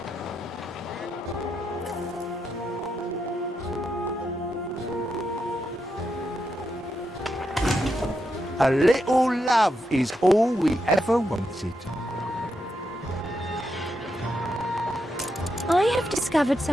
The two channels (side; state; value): both; normal; correlation 0.83